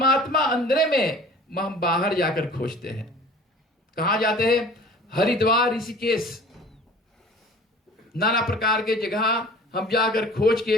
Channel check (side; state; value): both; normal; correlation 0.45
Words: अंदर में हम बाहर जाकर खोजते हैं। कहां जाते हैं? हरिद्वार, ऋषिकेश, नाना प्रकार के जगह हम जाकर खोज